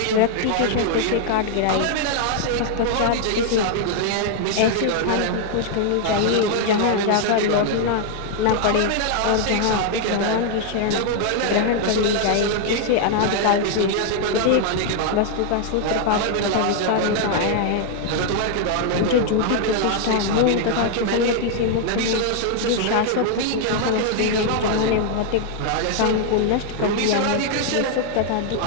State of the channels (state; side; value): different; both; correlation 0.00